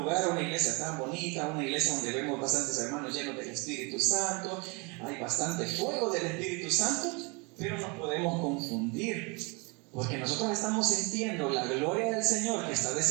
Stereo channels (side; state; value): left; quieter; 30.0 dB